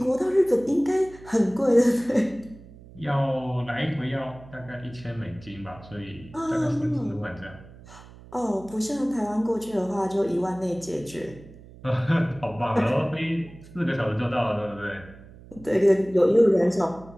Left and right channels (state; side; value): noise; right; hum, 20 dB below the sound